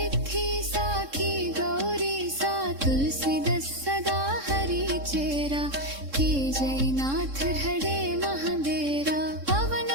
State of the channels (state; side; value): late; left; 3.7 ms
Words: साखी गौरी सा तुलसीदास सदा हरि चेरा के जयनाथ हरे महादेरा पवन